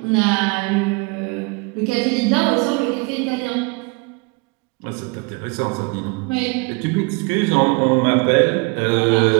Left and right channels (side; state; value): left; quieter; 29.2 dB